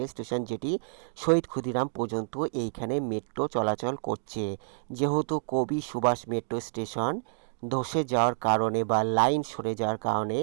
স্টেশন, যেটি শহীদ ক্ষুদিরাম পর্যন্ত এইখানে মেট্রো চলাচল করছে। যেহেতু কবি সুভাষ মেট্রো স্টেশন ধসে যাওয়ার কারণে বা লাইন সরে যাওয়ার কারণে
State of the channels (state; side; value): silent; left; digital silence